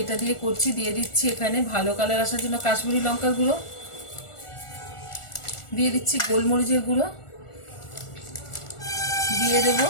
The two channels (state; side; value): late; right; 1.4 ms